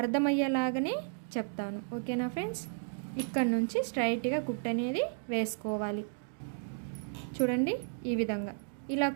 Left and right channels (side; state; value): left; silent; digital silence